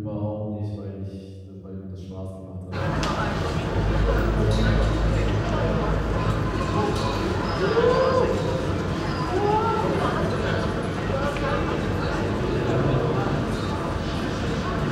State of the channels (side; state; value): both; identical; correlation 1.00